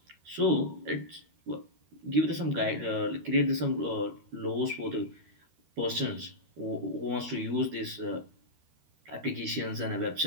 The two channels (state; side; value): late; left; 13 ms